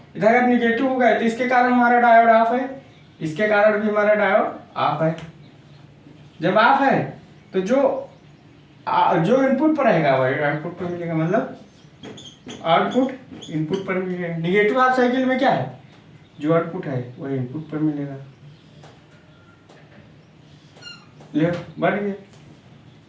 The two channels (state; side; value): identical; both; correlation 1.00